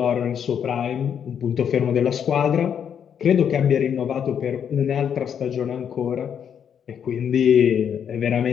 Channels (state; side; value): quieter; right; 8.2 dB